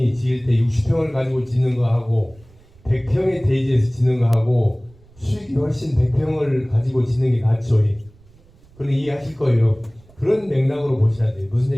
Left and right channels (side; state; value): right; noise; rumble, 27 dB below the sound